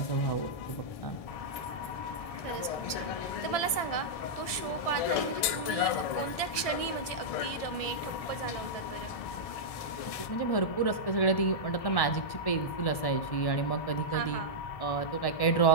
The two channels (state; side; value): late; right; 1.7 ms